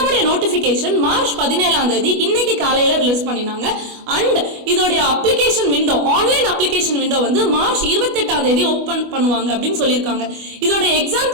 நோட்டிபிகேஷன் மார்ச் 17 இன்னைக்கு காலையில ரிலீஸ் பண்ணினாங்க. அண்ட் இதோடைய application window, online application window வந்து மார்ச் 28 ஓபன் பண்ணுவாங்க அப்படின்னு சொல்லியிருக்காங்க. இதோட எக்ஸாம்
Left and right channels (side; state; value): left; late; 25 ms